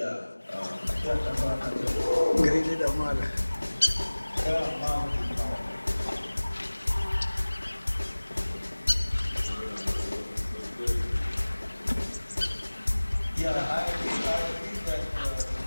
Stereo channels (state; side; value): inverted; both; correlation -1.00